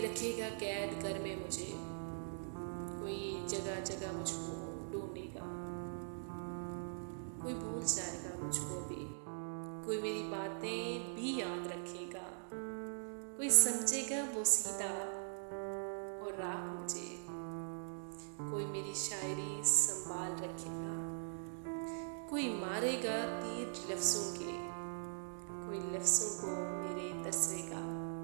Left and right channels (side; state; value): left; silent; digital silence